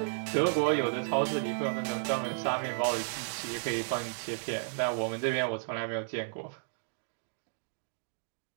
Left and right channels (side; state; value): left; silent; digital silence